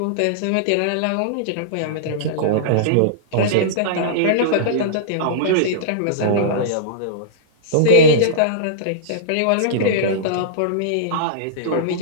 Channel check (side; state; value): both; different; correlation -0.03